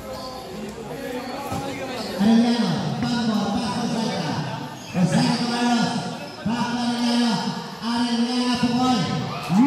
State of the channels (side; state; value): both; identical; correlation 1.00